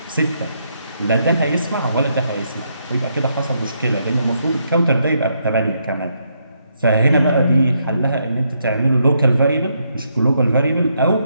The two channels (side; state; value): both; inverted; correlation -0.77